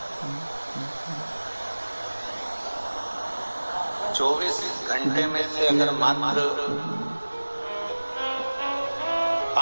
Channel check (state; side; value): inverted; both; correlation -1.00